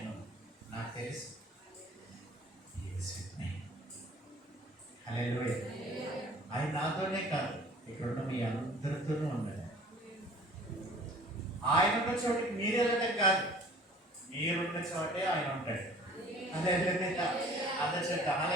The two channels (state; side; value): normal; both; correlation 0.49